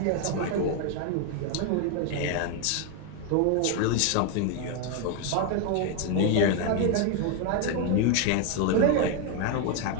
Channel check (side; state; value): both; different; correlation 0.01